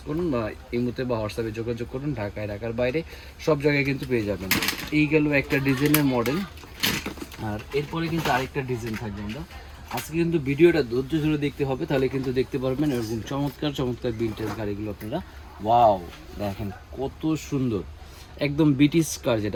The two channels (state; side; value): identical; both; correlation 1.00